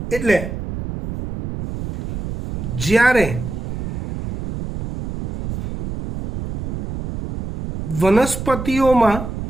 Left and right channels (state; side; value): noise; right; rumble, 7 dB below the sound